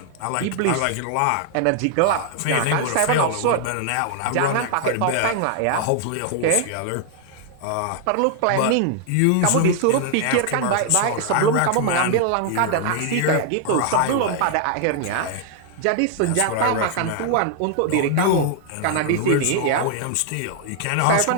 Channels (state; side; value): different; both; correlation 0.00